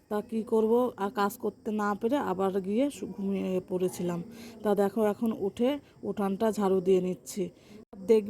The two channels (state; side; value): identical; both; correlation 1.00